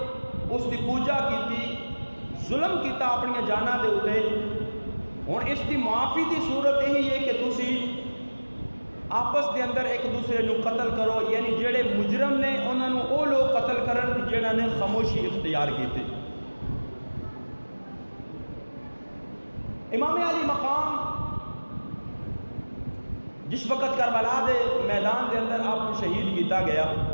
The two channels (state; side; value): inverted; both; correlation -1.00